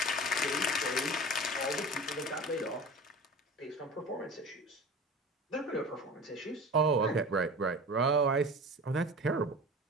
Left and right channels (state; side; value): normal; both; correlation 0.35